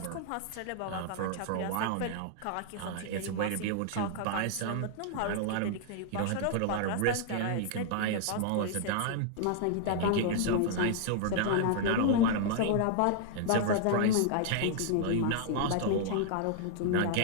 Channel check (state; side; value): different; both; correlation -0.01